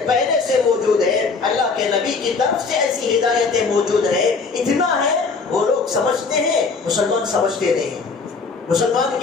پہلے سے موجود ہے، اللہ کے نبی کی طرف سے ایسی ہدایتیں موجود ہیں. اتنا ہے وہ لوگ سمجھتے ہیں، مسلمان سمجھتے نہیں ہیں. مسلمان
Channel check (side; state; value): right; quieter; 4.6 dB